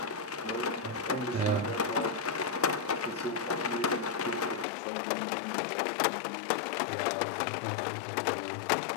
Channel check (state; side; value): drops out; right; at 4.7 s